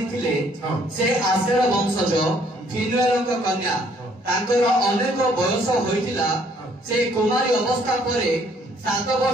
ଥିଲେ ସେ ଆସେର ବଂଶଜ ଫିନୁଏଲଙ୍କ କନ୍ୟା ତାଙ୍କର ଅନେକ ବୟସ ହୋଇଥିଲା ସେ କୁମାରୀ ଅବସ୍ଥା ପରେ 7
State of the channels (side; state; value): both; normal; correlation 0.64